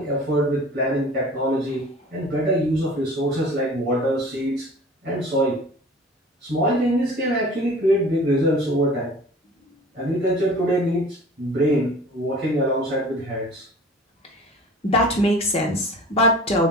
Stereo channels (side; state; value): both; normal; correlation 0.43